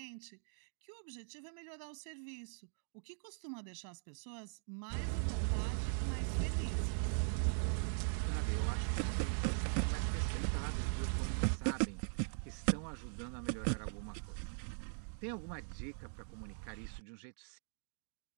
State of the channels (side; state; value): left; silent; digital silence